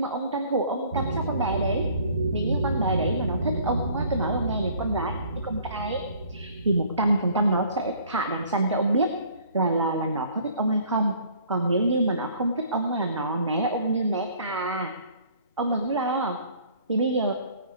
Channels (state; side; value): inverted; both; correlation -0.55